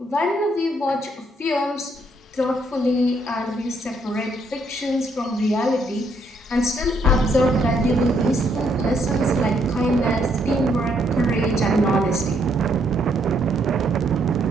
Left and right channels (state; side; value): normal; both; correlation 0.72